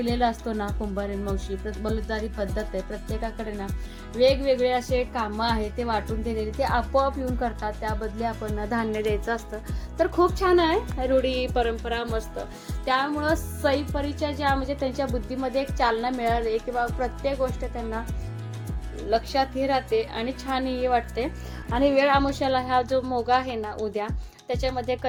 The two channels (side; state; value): both; identical; correlation 1.00